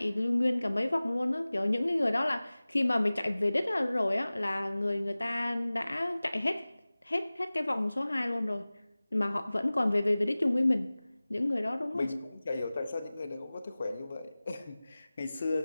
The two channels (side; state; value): both; inverted; correlation -0.98